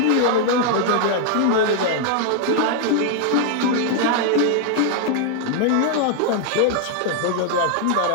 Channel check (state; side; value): different; both; correlation 0.00